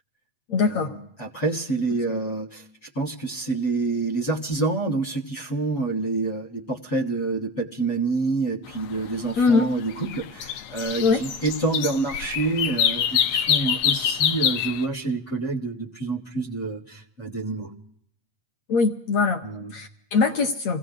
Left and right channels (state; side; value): late; right; 8.2 ms